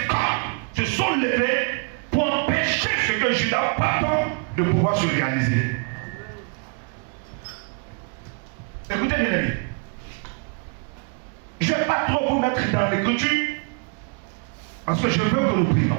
corps se sont levés pour empêcher ce que Juda porte de pouvoir se réaliser. Écoutez bien aimé, je ne vais pas trop vous mettre dans l'écriture parce que je veux que nous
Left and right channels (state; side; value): quieter; left; 38.8 dB